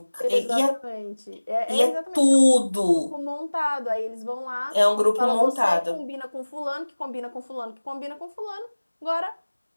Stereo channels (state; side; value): inverted; both; correlation -1.00